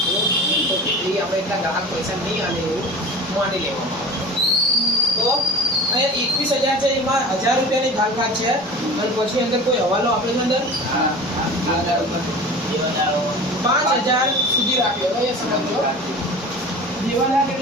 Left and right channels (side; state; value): both; normal; correlation 0.37